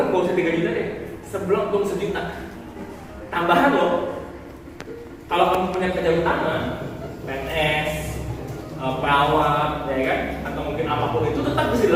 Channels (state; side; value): identical; both; correlation 1.00